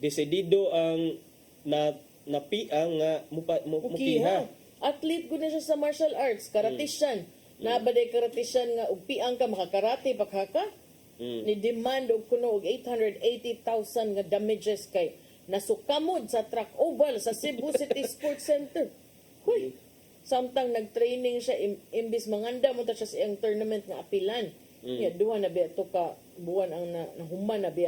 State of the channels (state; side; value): identical; both; correlation 1.00